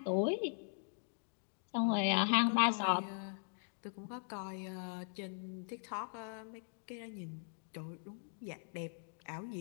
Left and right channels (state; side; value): silent; right; digital silence